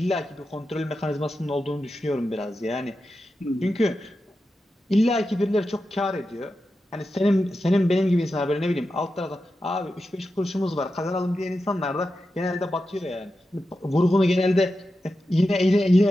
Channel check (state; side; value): normal; both; correlation 0.90